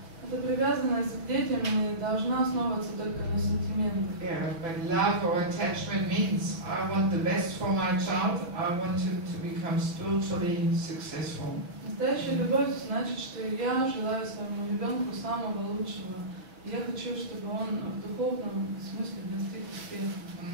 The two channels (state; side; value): late; left; 5.9 ms